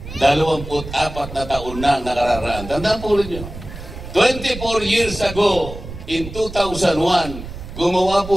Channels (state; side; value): noise; right; rumble, 11 dB below the sound